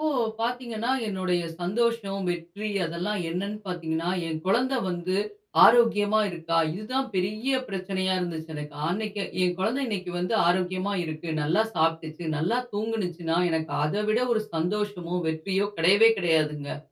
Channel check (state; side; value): identical; both; correlation 1.00